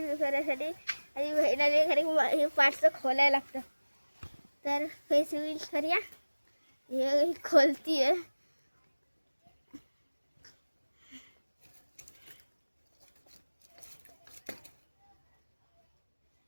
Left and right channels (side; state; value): both; inverted; correlation -1.00